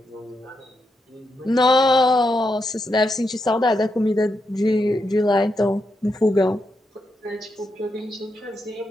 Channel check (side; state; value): both; normal; correlation 0.83